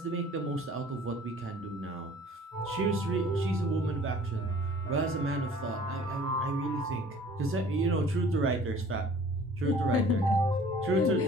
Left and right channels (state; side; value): normal; both; correlation 0.50